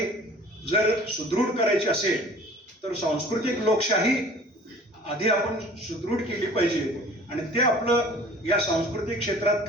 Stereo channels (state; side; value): normal; both; correlation 0.47